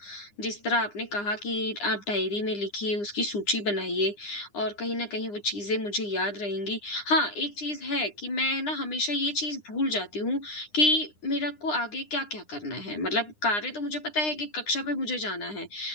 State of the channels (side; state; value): right; late; 9.8 ms